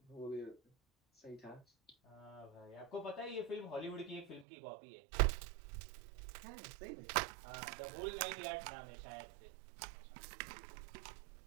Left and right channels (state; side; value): drops out; left; at 4.5 s